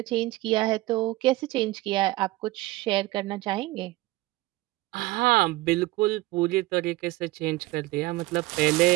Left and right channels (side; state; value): left; quieter; 19.1 dB